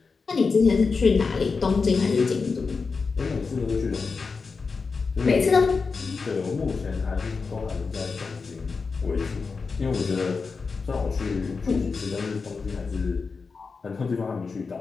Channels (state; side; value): quieter; right; 4.7 dB